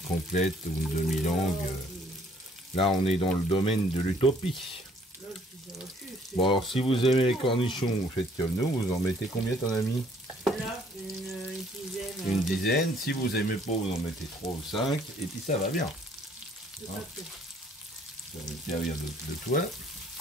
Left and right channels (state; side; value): normal; both; correlation 0.61